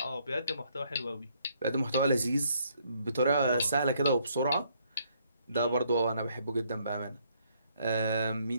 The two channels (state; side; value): inverted; both; correlation -0.69